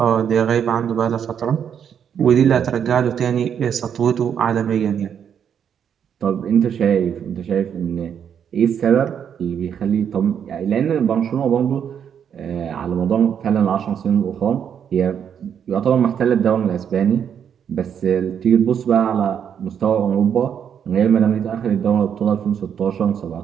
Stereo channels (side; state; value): left; quieter; 8.2 dB